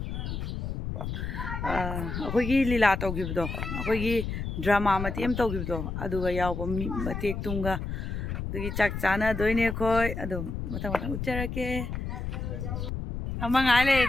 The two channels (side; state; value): left; noise; rumble, 4 dB below the sound